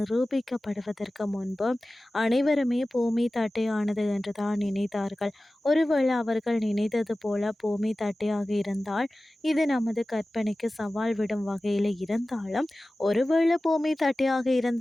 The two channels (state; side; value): normal; both; correlation 0.96